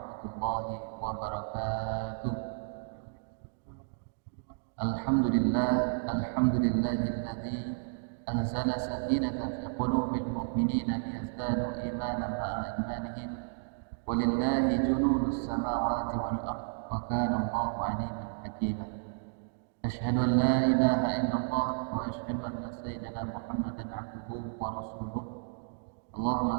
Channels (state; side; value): silent; left; digital silence